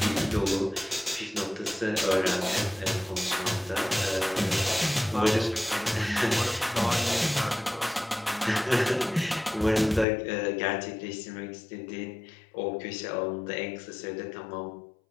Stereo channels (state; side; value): drops out; right; at 10.1 s